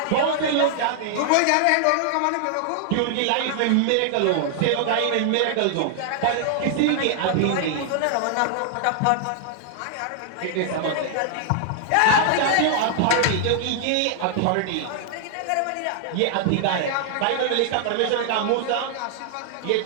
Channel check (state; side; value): different; both; correlation 0.00